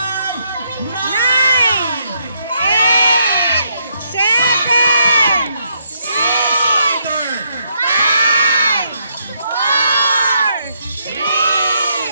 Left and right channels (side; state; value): both; inverted; correlation -0.76